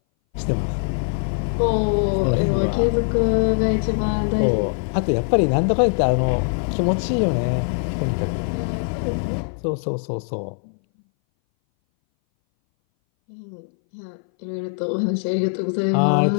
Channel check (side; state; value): right; silent; 61 dB below the other